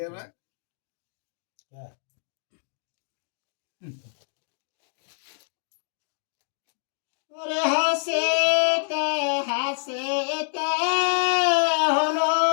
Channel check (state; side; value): silent; right; digital silence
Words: রাখ। ওরে হাসিতে হাসিতে হলো